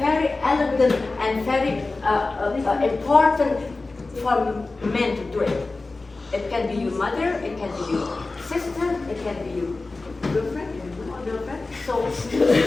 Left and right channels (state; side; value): quieter; right; 3.5 dB